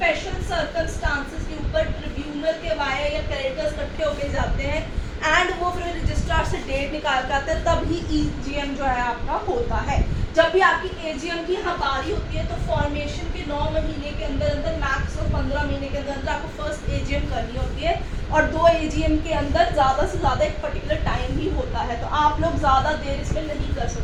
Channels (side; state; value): both; identical; correlation 1.00